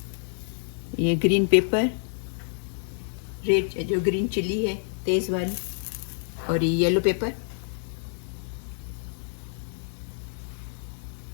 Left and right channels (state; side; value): silent; right; digital silence